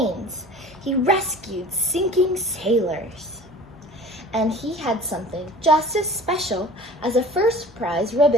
He rescued sinking sailors. And he had something just as special as a first prize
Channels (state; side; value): normal; both; correlation 0.42